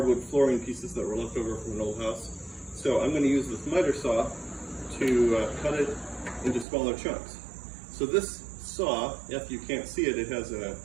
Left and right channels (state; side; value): drops out; left; at 6.7 s